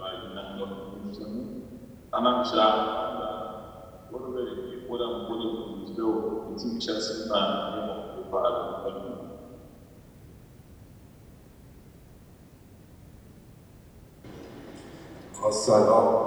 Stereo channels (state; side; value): identical; both; correlation 1.00